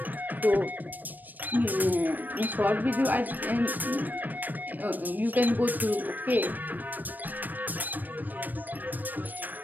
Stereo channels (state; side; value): late; left; 0.087 ms